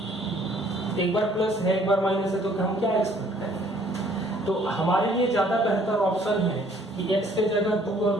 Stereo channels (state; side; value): normal; both; correlation 0.60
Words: एक बार प्लस है एक बार माइनस है, तो हम क्या एक्सपेक्ट करें? तो हमारे लिए ज्यादा बेहतर ऑप्शन है कि x के जगह 2 और